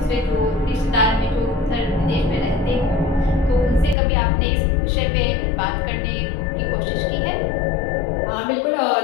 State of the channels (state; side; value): drops out; right; at 4.0 s